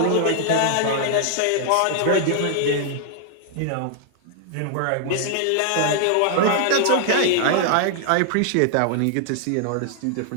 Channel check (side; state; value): both; different; correlation 0.00